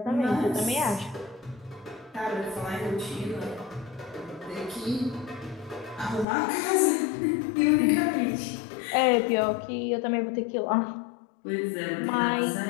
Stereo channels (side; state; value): right; drops out; at 6.2 s